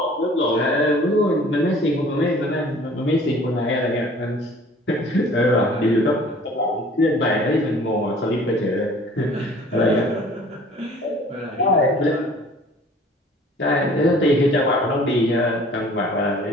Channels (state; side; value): normal; both; correlation 0.50